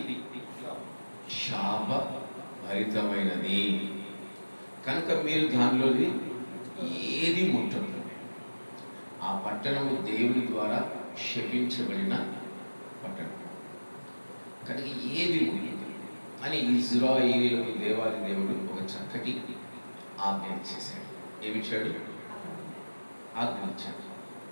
శాపభరితమైనది. కనుక మీరు దానిలోది ఏది ముట్టదు. ఆ పట్టణము దేవుని ద్వారా శపించబడిన పట్టణం కనుక ఏది ముట్టదు అని ఇశ్రాయేలీయులకు దేవాది దేవుడు ఒక చక్కటి ఆజ్ఞ ఇచ్చేశాడు. ఏమిచ్చాడు? ఆజ్ఞ ఇచ్చాడు.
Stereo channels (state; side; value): inverted; both; correlation -1.00